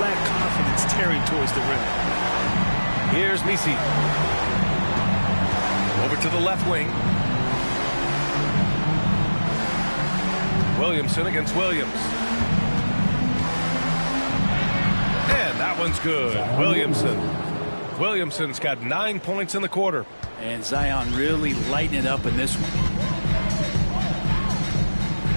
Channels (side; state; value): both; inverted; correlation -1.00